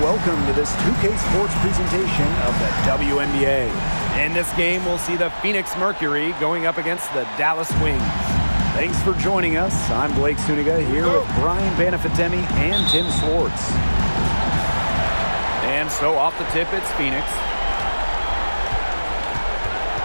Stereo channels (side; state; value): both; inverted; correlation -1.00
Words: welcome to this 2K Sports presentation of the WNBA. In this game, we'll see the Phoenix Mercury going up against the Dallas Wings. Thanks for joining us. I'm Blake Suniga here with Brian Banafitemi and Tim Swartz. And so off the tip, it's Phoenix.